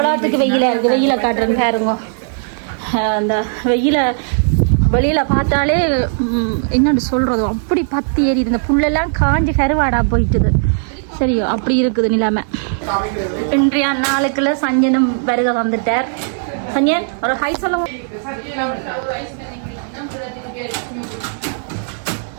வெயில இருக்கு வெயில காட்டுறேன்னு பாருங்க அந்த வெயில வெளியில பார்த்தாலே என்னன்னு சொல்றது அப்படி பத்தி ஏறிது இந்த புல்லெல்லாம் காஞ்சி கருவாடா போயிட்டுது சரியோ அப்படி இருக்குது நிலைமை இன்றைய நாளுக்குள்ள சஞ்சனும் வருக வந்துட்டார் சஞ்சன் ஒரு ஹை சொல்லுங்க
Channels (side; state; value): left; silent; digital silence